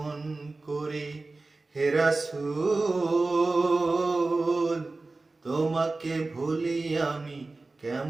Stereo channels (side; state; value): left; quieter; 3.4 dB